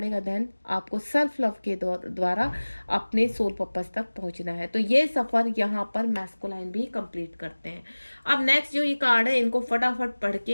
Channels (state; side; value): inverted; both; correlation -1.00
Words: देन आपको सेल्फ लव के द्वारा अपने सोल पर्पस तक पहुंचना है। तो ये सफ़र यहाँ पर मैस्कुलाइन भी कंप्लीट करते हैं। अब नेक्स्ट जो ये कार्ड है इनको फटाफट पढ़